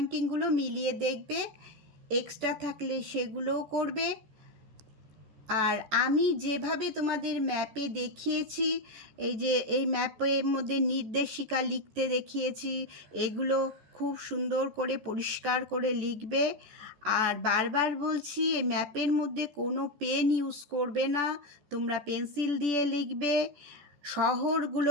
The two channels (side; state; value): left; late; 14 ms